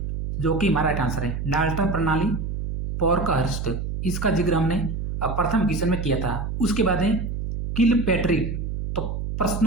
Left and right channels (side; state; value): right; noise; hum, 4 dB below the sound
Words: जो कि हमारा राइट आंसर है। डाल्टन प्रणाली, पोर्कहस्ट, इसका जिक्र हमने प्रथम क्वेश्चन में किया था। उसके बाद है किलपैट्रिक, तो